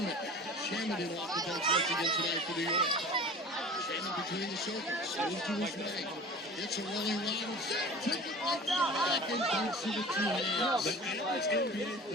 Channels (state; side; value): normal; both; correlation 0.40